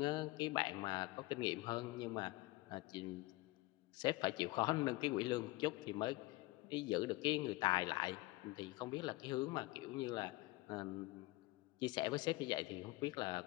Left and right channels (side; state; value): right; quieter; 20.5 dB